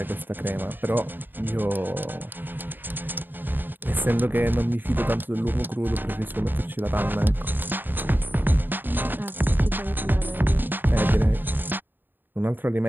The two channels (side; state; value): left; late; 0.093 ms